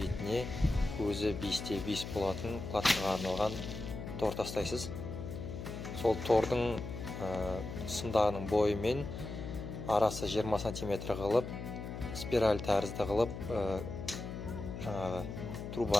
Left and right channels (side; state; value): left; noise; hum, 8 dB below the sound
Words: көзі 5×5 болатын платформаға арналған тор тастайсыз. Сол тордың сымдағының бойымен арасы 20 см қылып, спираль тәрізді қылып, жаңағы